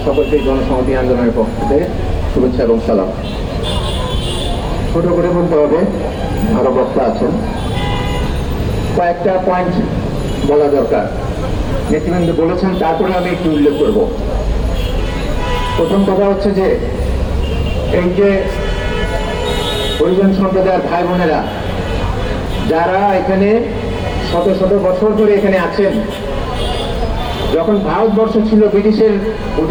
সকলকে জনসংহতি আন্দোলনের পক্ষ থেকে শুভেচ্ছা এবং সালাম। ছোট করে বলতে হবে, আরো বক্তা আছেন, কয়েকটা পয়েন্ট বলা দরকার। নেতৃবৃন্দ বলেছেন, তারপরে আমি একটু উল্লেখ করব। প্রথম কথা হচ্ছে যে এই যে হরিজন সম্প্রদায়ের ভাই বোনেরা যারা এখানে শত শত বছর ধরে এখানে আছেন, যখন ভারতবর্ষ ছিল ব্রিটিশের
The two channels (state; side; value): identical; both; correlation 1.00